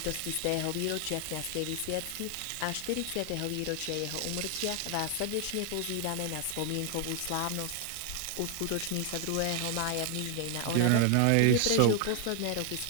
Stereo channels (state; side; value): different; both; correlation 0.00